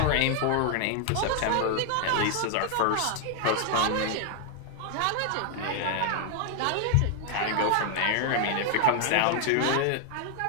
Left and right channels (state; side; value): different; both; correlation 0.00